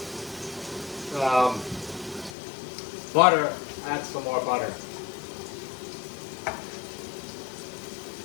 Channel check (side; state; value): right; drops out; at 2.3 s